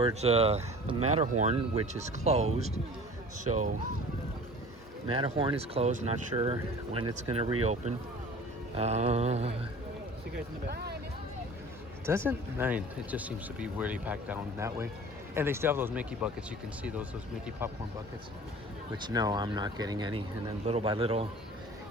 the Matterhorn, which is closed. So Matterhorn is closed, not sure when it's gonna reopen. See you guys in the back. It doesn't, it just seems to be really packed down that way. And they still have those Mickey buckets. You can see those Mickey popcorn buckets, which no, I'm not getting any. And then little by little,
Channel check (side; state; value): both; normal; correlation 0.43